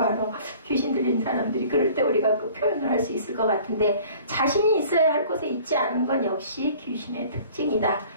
바로 귀신 들린 사람들이 그럴 때 우리가 그 표현을 할 수 있을 것 같은데, 자신이 있어야 할 곳에 있지 않은 건 역시 귀신의 특징이다.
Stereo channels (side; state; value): both; inverted; correlation -0.49